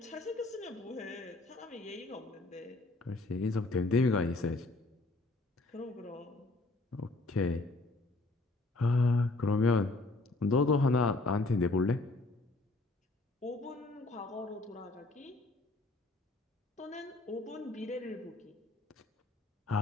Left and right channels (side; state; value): right; quieter; 3.1 dB